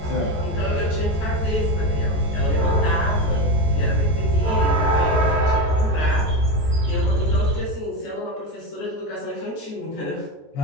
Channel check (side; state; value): right; late; 14 ms